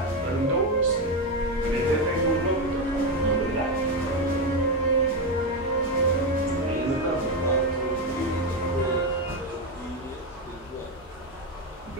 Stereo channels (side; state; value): both; normal; correlation 0.10